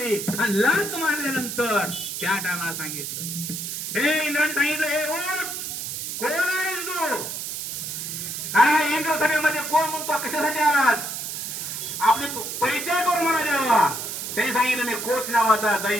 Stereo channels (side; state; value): right; noise; hiss, 5 dB below the sound